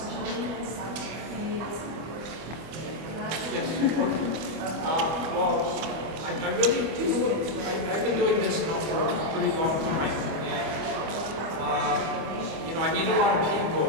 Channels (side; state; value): left; late; 25 ms